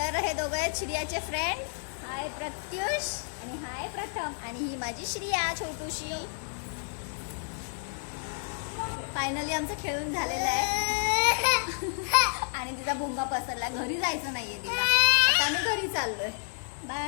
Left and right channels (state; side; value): silent; right; digital silence